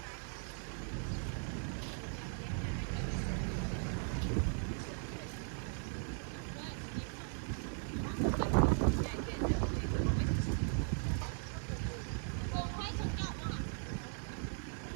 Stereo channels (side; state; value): left; silent; 52 dB below the other